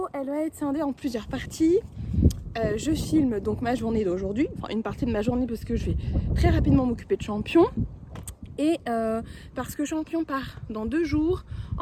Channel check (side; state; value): both; identical; correlation 1.00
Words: elle va être scindée en plusieurs parties. Je filme donc ma journée d'aujourd'hui, enfin une partie de ma journée parce que je vais très rapidement m'occuper de Champion. Et parce que Champion part dans 2 jours